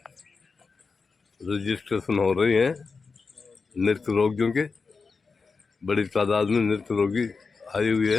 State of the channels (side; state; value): right; quieter; 4.7 dB